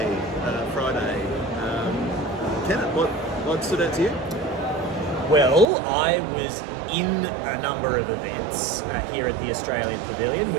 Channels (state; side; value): drops out; left; at 5.7 s